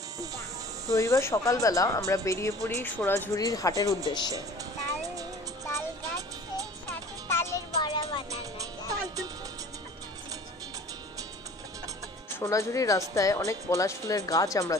রবিবার সকালবেলা আমরা বেরিয়ে পড়ি সোনাঝুরির হাটের উদ্দেশ্যে। সোনাঝুরির রাস্তায় অনেক পলাশ ফুলের গাছ আমরা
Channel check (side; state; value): both; normal; correlation 0.46